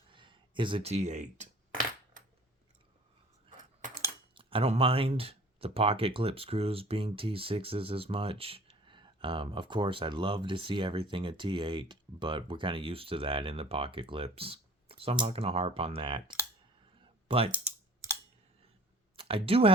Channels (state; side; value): normal; both; correlation 0.49